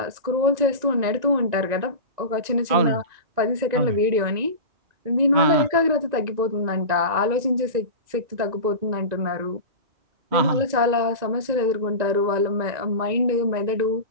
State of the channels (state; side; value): late; left; 1.9 ms